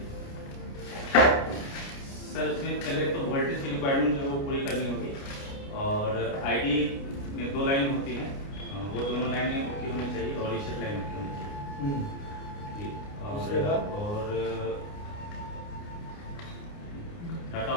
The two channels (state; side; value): late; right; 29 ms